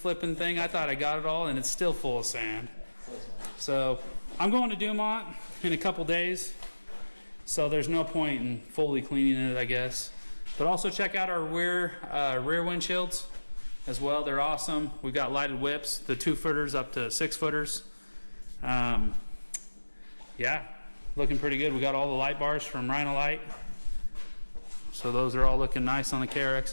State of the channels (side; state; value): both; inverted; correlation -1.00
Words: thing. I thought I got it all, and it's still full of sand. So I'm going to Dumont in a couple days. So there's no point in fully cleaning it, I guess. But also check out our rear windshields as well. They're awesome. We've got lighted whips, the 2-footers up to 6-footers. Yeah, looking pretty good. We got all the light bars from Rhino Light. So those are all looking nice on the